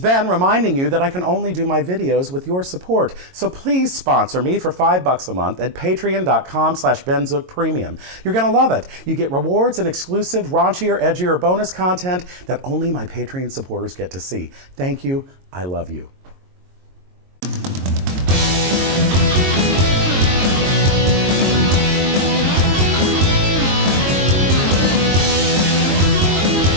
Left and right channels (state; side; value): late; left; 22 ms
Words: reminding you that I can only do my videos with your support. So please sponsor me for $5 a month at patreon.com/BenZookPremium. You're gonna love it. You get rewards and exclusive, raunchier, edgier bonus content that only my Patreon supporters get to see. Thank you. I love you.